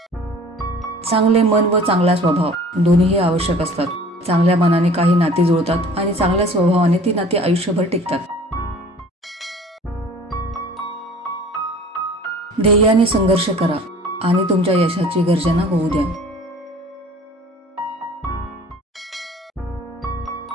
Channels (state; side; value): normal; both; correlation 0.47